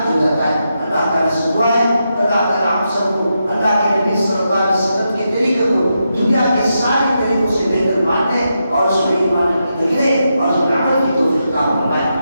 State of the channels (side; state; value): both; inverted; correlation -0.85